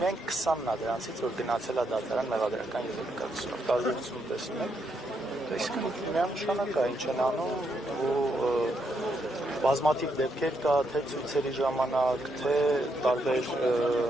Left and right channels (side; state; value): both; normal; correlation 0.78